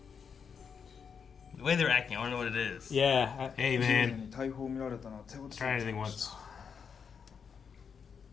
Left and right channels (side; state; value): right; quieter; 6.5 dB